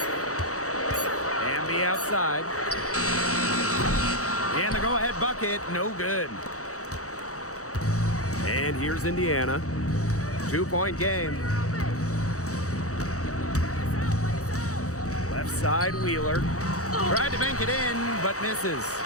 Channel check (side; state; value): right; late; 0.65 ms